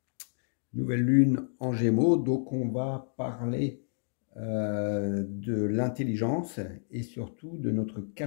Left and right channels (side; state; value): right; silent; digital silence